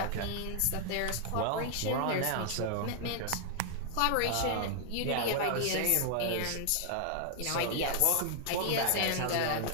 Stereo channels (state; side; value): different; both; correlation 0.00